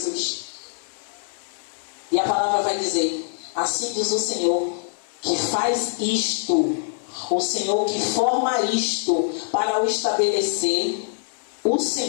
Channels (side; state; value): right; silent; 59 dB below the other